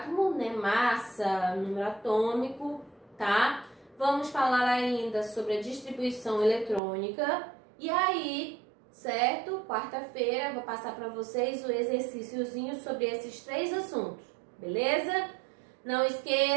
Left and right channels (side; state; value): left; drops out; at 6.8 s